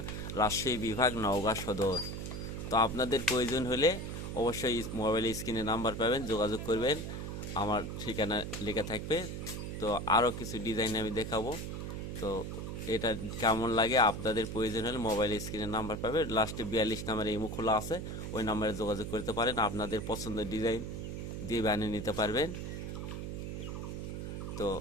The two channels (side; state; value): right; noise; hum, 6 dB below the sound